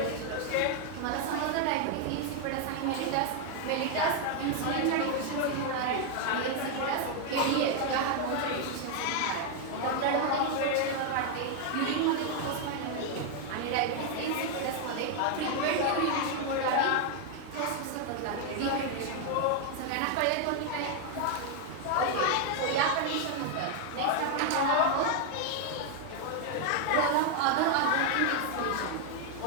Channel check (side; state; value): both; different; correlation 0.00